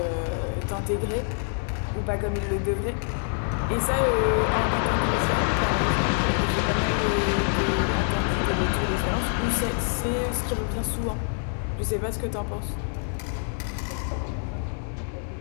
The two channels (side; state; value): right; silent; 57 dB below the other